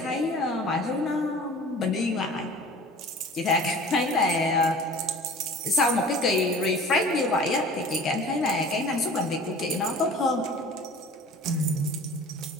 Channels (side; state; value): both; normal; correlation 0.43